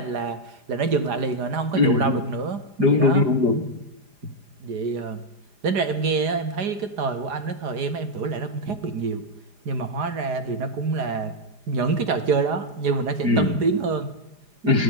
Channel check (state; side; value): late; left; 4.9 ms